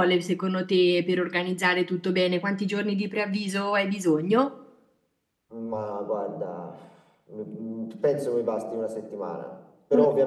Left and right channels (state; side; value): identical; both; correlation 1.00